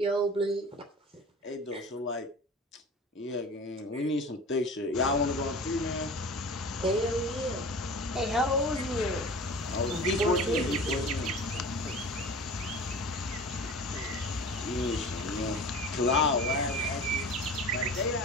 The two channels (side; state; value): both; normal; correlation 0.38